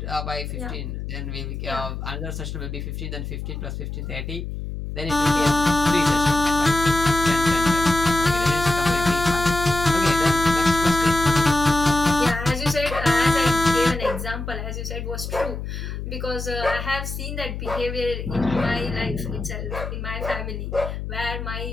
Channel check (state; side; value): noise; left; hum, 6 dB below the sound